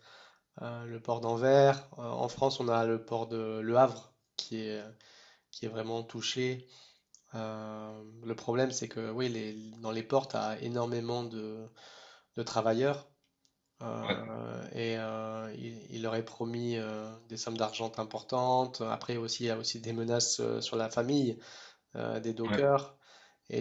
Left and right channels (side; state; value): both; identical; correlation 1.00